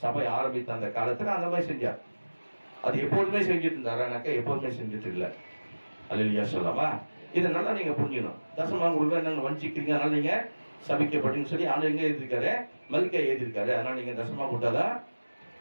சபை ஆரம்பித்த அந்த காலத்துல அந்த மாதிரி செஞ்சார். அது எப்போதுமே செஞ்சுட்டு இருந்தாரானாக்கா எப்போதுமே செஞ்சுட்டு இல்லை. அல்லேலூயா சொல்லலாமா? இதை நல்லா நீங்க புரிஞ்சுக்கணும். தசமாக கொடுக்க என்னங்க வஞ்சிக்கிறீங்க, அதனால நீங்க சபிக்கப்பட்டீங்கன்னு சொல்லி ஆண்டு எங்க எழுதியிருக்காரு, மல்கியா எழுதியிருக்காரு. அதனால நீங்க தசமா கொடுத்தாதான்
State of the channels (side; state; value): both; inverted; correlation -1.00